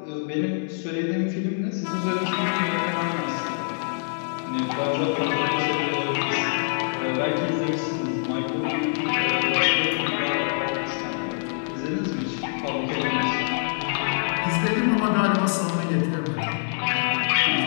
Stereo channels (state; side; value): silent; right; 62 dB below the other